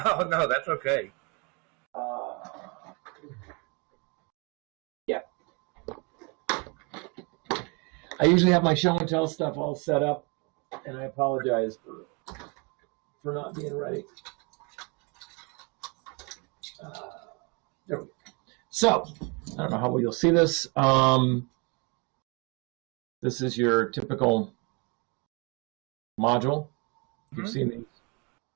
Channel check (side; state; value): left; quieter; 31.4 dB